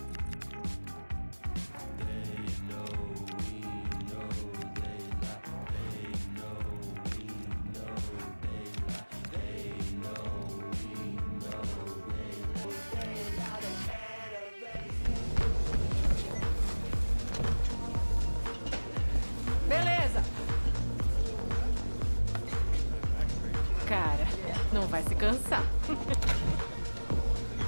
Beleza. Cara, não vai se cansar.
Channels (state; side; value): inverted; both; correlation -1.00